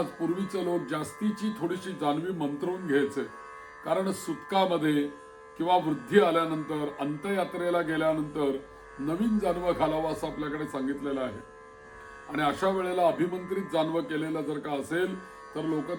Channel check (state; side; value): identical; both; correlation 1.00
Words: पूर्वीचे लोक जास्तीची थोडीशी जानवी मंत्रवून घ्यायचे, कारण सुतकामध्ये किंवा वृद्धी आल्यानंतर, अंत्ययात्रेला गेल्यानंतर नवीन जानवं घालावं असं आपल्याकडे सांगितलेलं आहे. आणि अशा वेळेला अभिमंत्रित जानवं केलेलं जर का असेल तर लोक